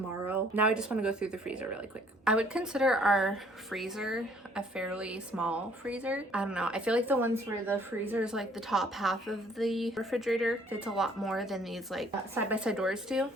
Now I just want to go through the freezer really quick. I would consider our freezer a fairly small freezer. I don't know, I feel like the ones where the freezer is like the top half of the refrigerator fits a lot more than these like side-by-side doors do,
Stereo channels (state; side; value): normal; both; correlation 0.61